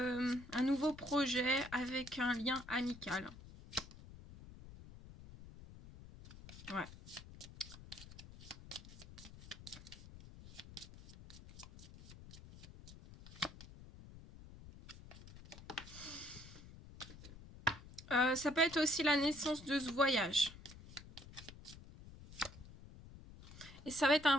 nouveau projet avec un lien amical. Ouais. Ça peut être aussi la naissance de ce voyage. Et ça va être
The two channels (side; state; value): left; noise; rumble, 16 dB below the sound